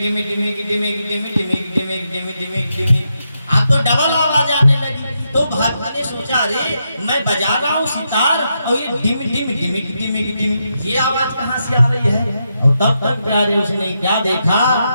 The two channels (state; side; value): inverted; both; correlation -0.83